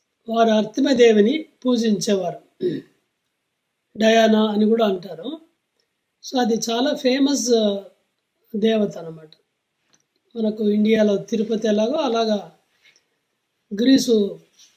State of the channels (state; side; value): identical; both; correlation 1.00